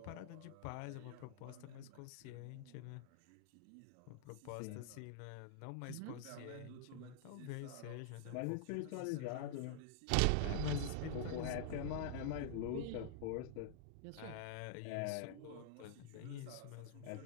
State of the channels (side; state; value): both; different; correlation -0.01